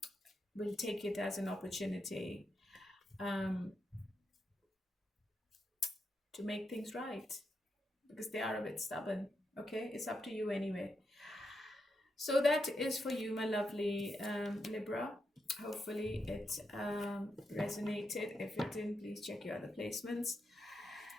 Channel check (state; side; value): normal; both; correlation 0.84